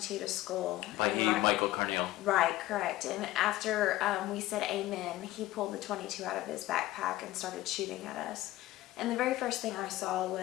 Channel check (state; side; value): quieter; right; 16.3 dB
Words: to school. Like Michael Carneal. Right, correct. And after we said amen, he pulled the 22 out of his backpack and started shooting at us. And the very first thing I saw